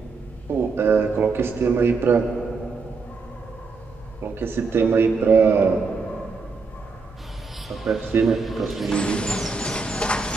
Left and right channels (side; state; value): left; quieter; 4.5 dB